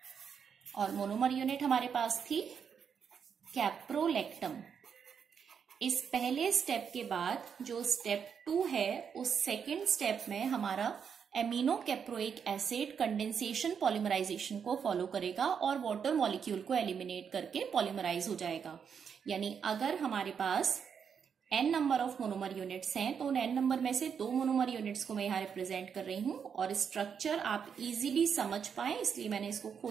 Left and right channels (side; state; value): left; quieter; 7.0 dB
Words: और मोनोमर यूनिट हमारे पास थी कैप्रोलैक्टम। इस पहले स्टेप के बाद जो स्टेप 2 है, उस सेकेंड स्टेप में हमारा amino caproic acid condensation polymerisation को फॉलो करेगा और वाटर मॉलिक्यूल को एलिमिनेट करके पॉलीमराइज हो जाएगा। यानी अगर हमारे पास n number of monomer units हैं तो उन n नंबर में से 2 मोनोमर यूनिट्स को मैं यहाँ रिप्रेजेंट कर रही हूं, और स्ट्रक्चर आप इजीली समझ पाए इसलिए मैंने इसको